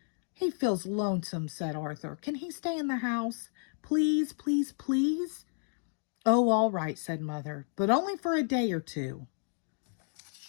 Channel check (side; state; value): right; silent; digital silence